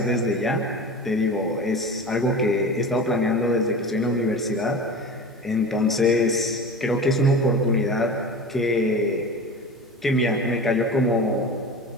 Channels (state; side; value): normal; both; correlation 0.33